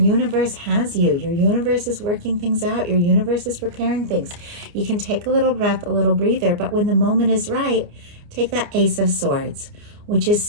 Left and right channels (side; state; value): left; late; 29 ms